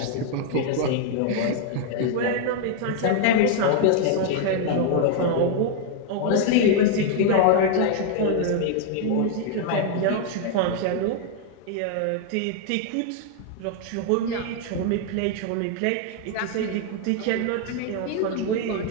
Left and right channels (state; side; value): different; both; correlation 0.00